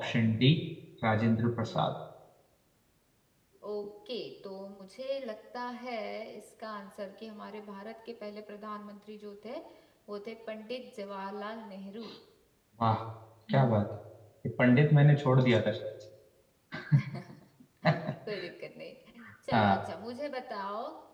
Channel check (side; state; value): both; identical; correlation 1.00